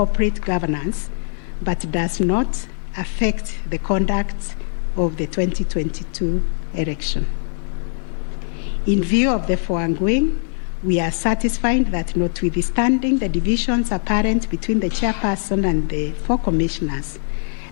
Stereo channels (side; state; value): right; silent; 65 dB below the other